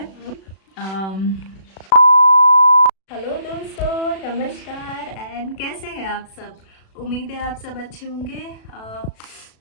अम, हेलो दोस्तों, नमस्कार एंड कैसे हैं आप सब। उम्मीद है आप सब अच्छे होंगे।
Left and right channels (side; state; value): right; late; 36 ms